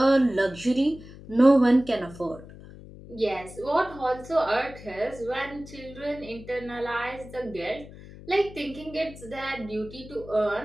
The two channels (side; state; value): left; noise; hum, 17 dB below the sound